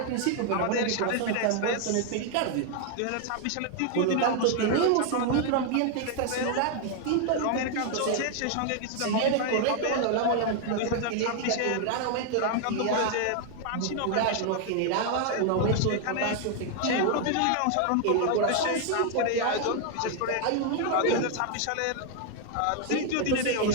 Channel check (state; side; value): different; both; correlation 0.00